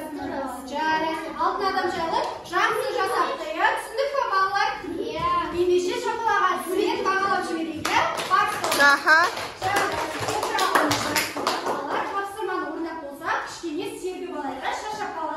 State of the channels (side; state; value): both; identical; correlation 1.00